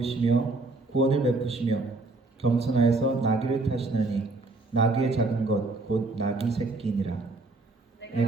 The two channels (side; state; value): left; quieter; 3.3 dB